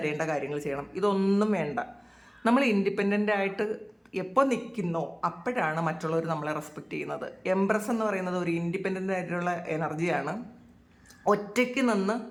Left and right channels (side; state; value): both; identical; correlation 1.00